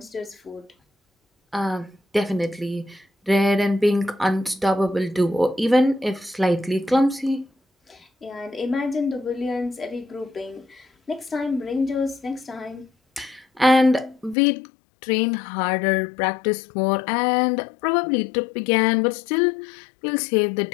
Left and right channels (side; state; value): right; drops out; at 14.4 s